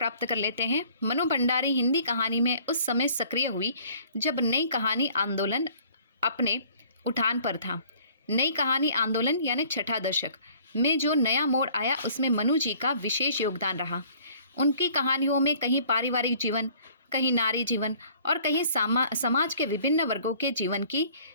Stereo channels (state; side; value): inverted; both; correlation -0.55